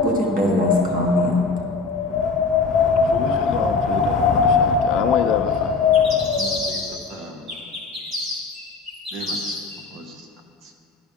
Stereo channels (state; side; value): quieter; right; 4.3 dB